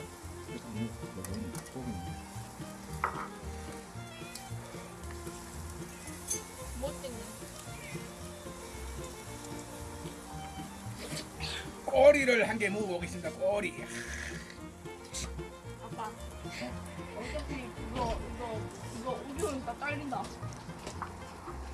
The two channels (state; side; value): identical; both; correlation 1.00